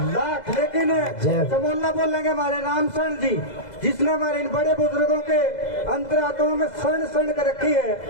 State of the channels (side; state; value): right; late; 2.0 ms